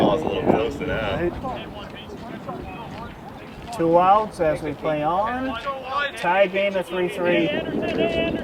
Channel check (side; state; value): both; identical; correlation 1.00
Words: a little closer now. Right. 2 outs as we play on. Tie game at 3-3.